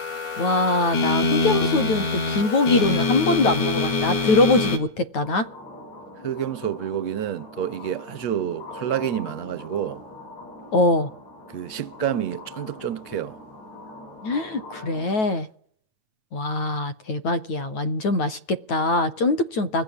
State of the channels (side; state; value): right; late; 9.3 ms